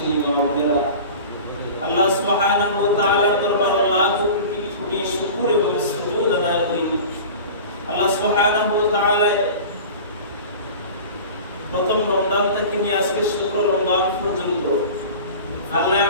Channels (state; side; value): inverted; both; correlation -0.37